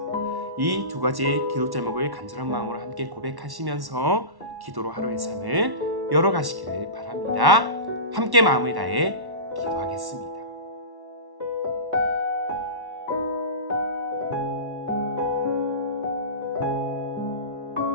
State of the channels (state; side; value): late; left; 1.1 ms